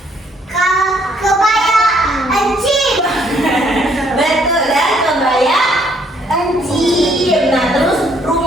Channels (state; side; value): normal; both; correlation 0.67